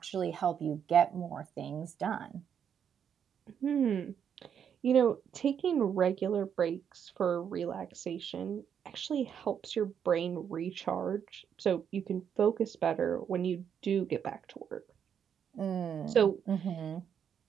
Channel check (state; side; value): quieter; left; 8.1 dB